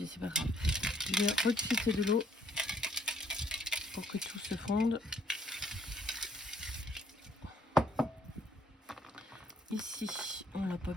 c'est pas grave. Je vais rectifier de l'eau pour que tout se fonde. Ici, on l'a pas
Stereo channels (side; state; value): both; normal; correlation 0.66